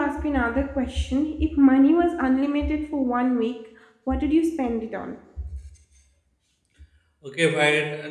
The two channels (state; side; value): identical; both; correlation 1.00